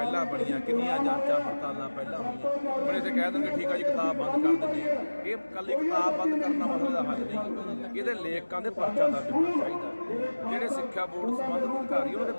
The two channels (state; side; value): inverted; both; correlation -1.00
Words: ਬਣੀਆਂ, ਕਿੰਨੀਆਂ ਜਾਂਚਾਂ ਪੜਤਾਲਾਂ ਪਹਿਲਾਂ ਹੋਈਆਂ। ਹੁਣ ਇੱਥੇ ਕਹਿ ਦੇਣਗੇ ਠੀਕ ਆ ਜੀ ਕਿਤਾਬ ਬੰਦ ਕਰ ਦਿੰਦੇ ਆ। ਇਹ ਇਕੱਲੀ ਕਿਤਾਬ ਬੰਦ ਕਰਨਾ ਮਸਲੇ ਦਾ ਹੱਲ ਨਹੀਂ। ਇਹਦੇ ਲੇਖਕਾਂ ਦੇ ਪਰਚਾ ਦਰਜ ਹੋਣਾ ਚਾਹੀਦਾ। ਜਿਹੜੇ ਸਿੱਖਿਆ ਬੋਰਡ ਸੰਬੰਧਿਤ ਅਧਿਕਾਰੀ ਉਹਨਾਂ ਦੇ